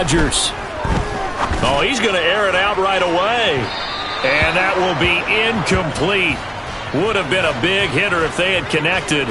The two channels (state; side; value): identical; both; correlation 1.00